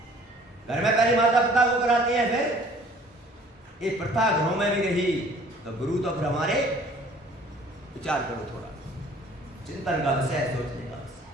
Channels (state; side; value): normal; both; correlation 0.53